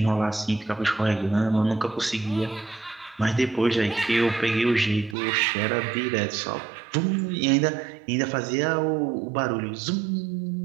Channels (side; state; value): left; drops out; at 5.2 s